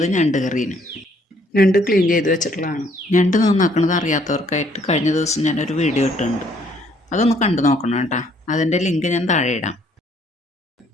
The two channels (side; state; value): both; normal; correlation 0.65